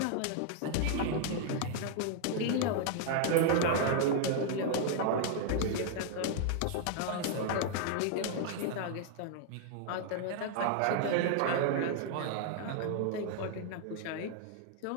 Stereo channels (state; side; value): different; both; correlation -0.01